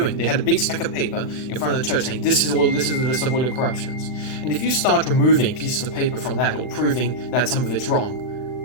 They had a big stack of paper in front of the church saying, this is the list of all your corruptions. And if you start removing pieces of paper from that or proving that some of it's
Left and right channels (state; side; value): late; right; 39 ms